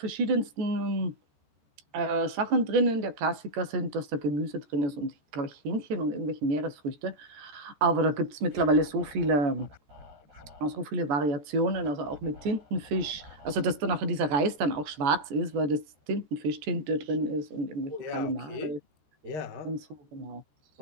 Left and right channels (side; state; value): left; late; 14 ms